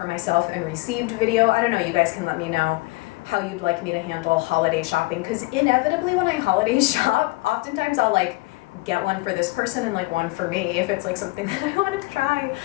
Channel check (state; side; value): quieter; right; 23.6 dB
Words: myself and received video. I don't know, you guys can let me know how you'd like me to handle holiday shopping, because inevitably when I holiday shop, oftentimes I'll like get one for this person and like one for me if it's like something that I want to try.